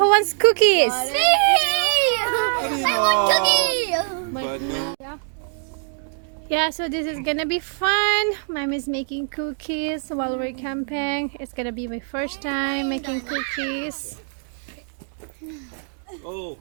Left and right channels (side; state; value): left; silent; digital silence